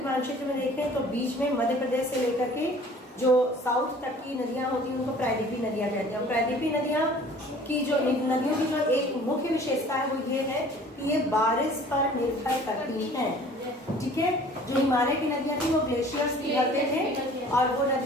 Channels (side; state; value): both; normal; correlation 0.49